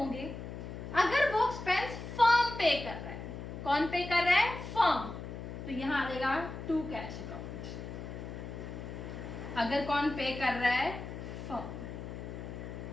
अगर वो एक्सपेंस फर्म पे कर रहा है, कौन पे कर रहा है, फर्म, तो यहां आ जाएगा टू कैश अकाउंट। अगर कौन पे कर रहा है, फर्म।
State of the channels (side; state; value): left; noise; hum, 9 dB below the sound